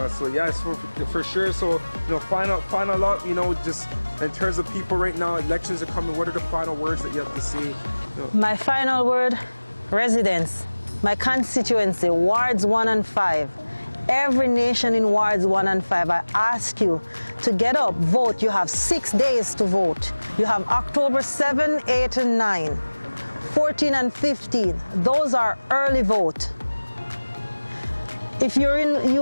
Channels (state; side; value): inverted; both; correlation -1.00